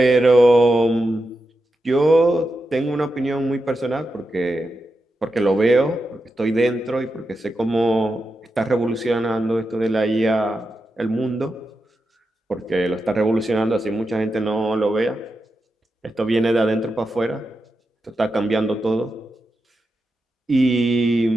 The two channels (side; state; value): both; normal; correlation 0.88